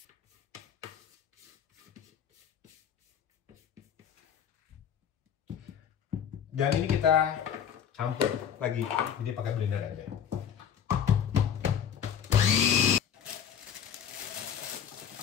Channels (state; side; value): quieter; right; 8.5 dB